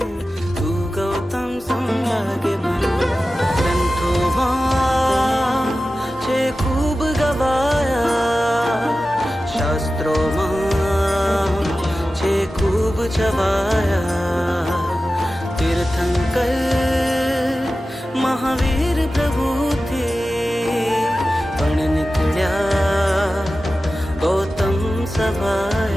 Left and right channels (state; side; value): normal; both; correlation 0.94